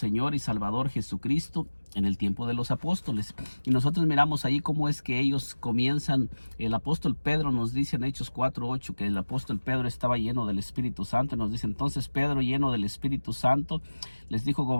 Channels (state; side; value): inverted; both; correlation -1.00